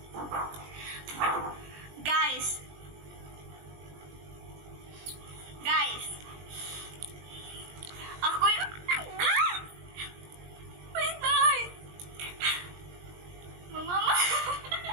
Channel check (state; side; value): late; left; 20 ms